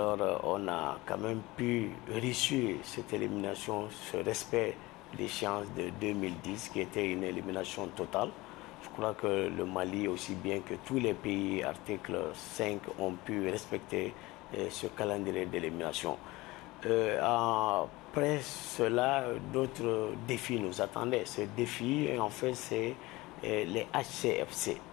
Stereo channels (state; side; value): quieter; right; 20.7 dB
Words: on a quand même pu réussir cette élimination, ce respect d'échéance de 2010, qui était une élimination totale. Je crois que le Mali, aussi bien que tous les pays, article 5, ont pu respecter ce calendrier d'élimination. Après cela, d'autres défis nous attendaient. Ce défi, en fait, c'est les HCFC.